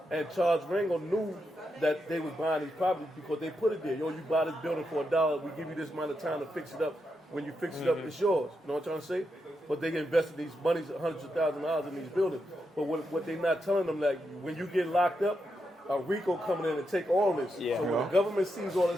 And Charles Rango knew that they was buying these properties because they put it there. You buy this building for $1, we give you this amount of time to fix it up. When you fix it up, it's yours. You know what I'm trying to say? But they invested these monies, hundreds of thousands of dollars in these buildings. But what they not telling them, like, when you get locked up, a RICO coming in and take all this. Yeah. So when the government sees all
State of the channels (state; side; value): normal; both; correlation 0.84